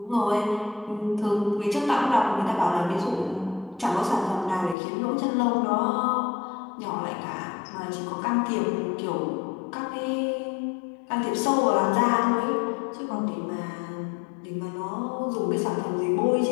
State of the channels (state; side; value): drops out; right; at 4.8 s